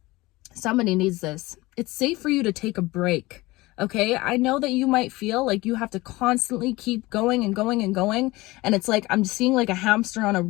Somebody needs this. It's safe for you to take a break. Okay. I know that you might feel like you have to constantly keep going and going and going. And it's like, I'm seeing like a hamster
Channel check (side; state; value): right; quieter; 20.7 dB